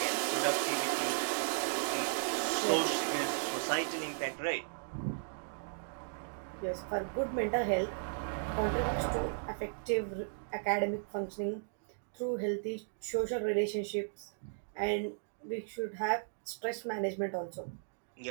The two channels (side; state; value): left; silent; digital silence